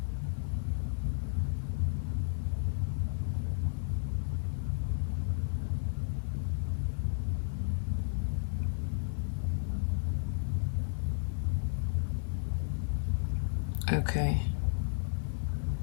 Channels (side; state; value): right; silent; 56 dB below the other